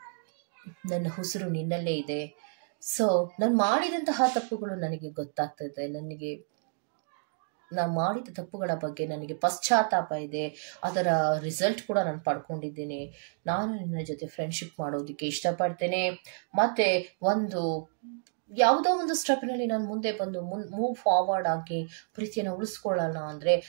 ನನ್ನ ಉಸಿರು ನಿನ್ನಲ್ಲೇ ಇದೆ. ಸೊ ನಾನು ಮಾಡಿದಂತಹ ತಪ್ಪುಗಳು ನನಗೆ ಗೊತ್ತಾಗ್ತದೆ, ನಾನು ಮಾಡಿದ ತಪ್ಪುಗಳ ಬಗ್ಗೆ ನನಗೆ ಪಶ್ಚಾತ್ತಾಪ ಇದೆ, ಅದರ ರಿಸಲ್ಟ್ ಕೂಡ ನಾನು ಪಡ್ಕೊಂಡಿದ್ದೇನೆ. ನಾನು ನಿನ್ನ ಜೊತೆ ಫ್ರೆಂಡ್ಶಿಪ್ ಮಾಡೋದಕ್ಕೆ ಇಷ್ಟಪಡ್ತೇನೆ, ಮತ್ತೆ ಯಾವುದೋ ಒಂದು ಸ್ಟೆಪ್ನಲ್ಲಿ ನಾನು ಮುಂದೆ ಬಂದು ಮೂವ್ ಫಾರ್ವರ್ಡ್ ಆಗಿ ಪ್ರೀತಿಯನ್ನು ಉಳಿಸ್ಕೊಳ್ಳೋಣ ಅಂದರೆ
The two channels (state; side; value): silent; left; digital silence